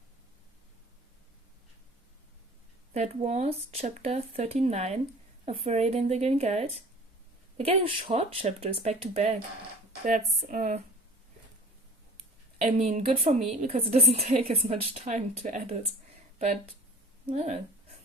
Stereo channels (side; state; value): both; normal; correlation 0.43